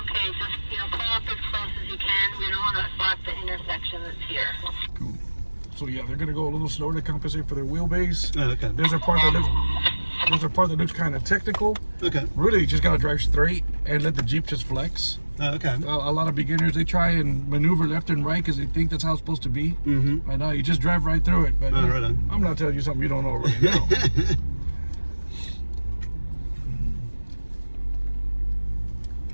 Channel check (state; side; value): inverted; both; correlation -1.00